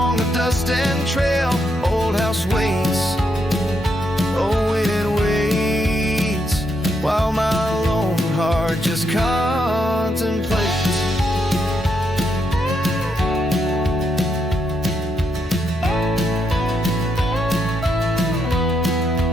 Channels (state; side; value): normal; both; correlation 0.79